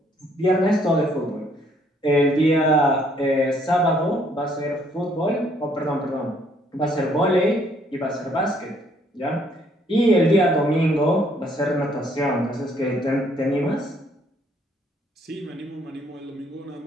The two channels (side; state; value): both; normal; correlation 0.66